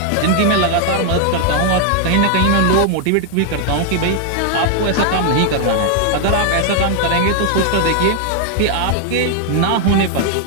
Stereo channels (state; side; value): different; both; correlation 0.00